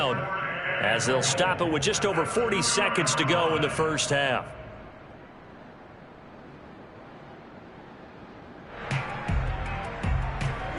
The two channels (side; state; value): both; identical; correlation 1.00